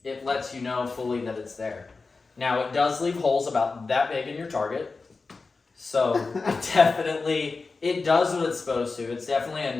it lets you know fully that it's there. Now, it does leave holes about that big in your target, so it does what it's supposed to. It's definitely a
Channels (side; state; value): right; quieter; 4.1 dB